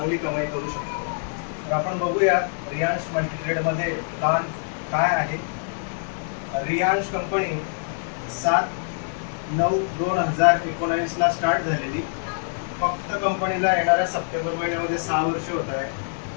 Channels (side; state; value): right; silent; 62 dB below the other